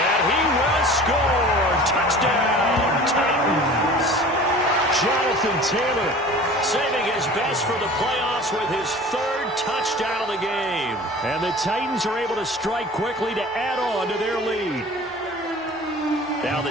he will score. Touchdown, Titans. Jonathan Taylor saving his best for the playoffs with his 3rd touchdown of the game. And the Titans are able to strike quickly to add on to their lead. Now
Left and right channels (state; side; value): normal; both; correlation 0.42